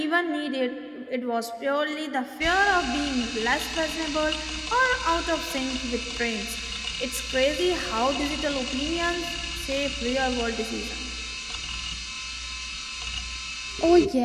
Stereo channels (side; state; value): both; identical; correlation 1.00